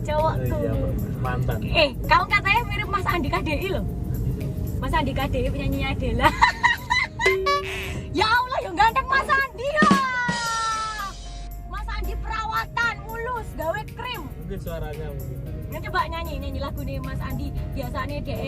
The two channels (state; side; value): identical; both; correlation 1.00